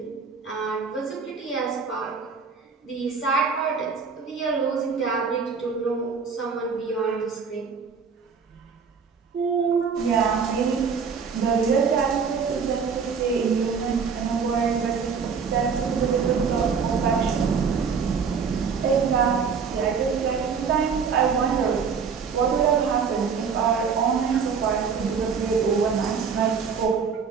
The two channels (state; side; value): quieter; left; 5.9 dB